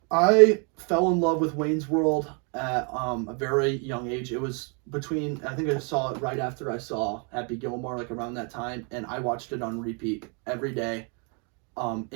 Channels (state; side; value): quieter; left; 36.3 dB